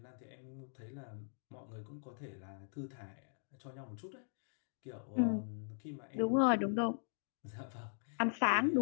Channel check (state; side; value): silent; right; digital silence